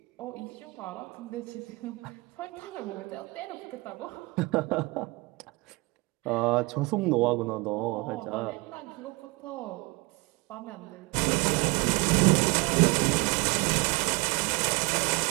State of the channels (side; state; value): left; quieter; 25.2 dB